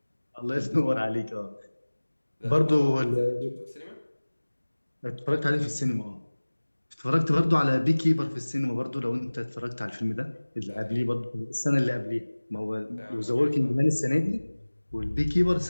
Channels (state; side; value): inverted; both; correlation -1.00